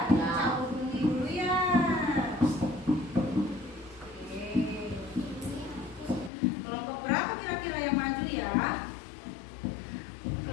cabut undi dulu ya. Oke. Kelompok berapa kira-kira yang maju ya?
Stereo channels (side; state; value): right; drops out; at 6.3 s